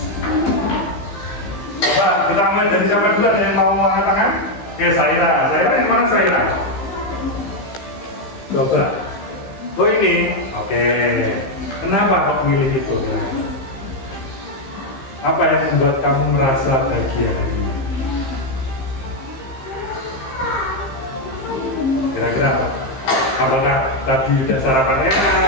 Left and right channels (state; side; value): late; right; 15 ms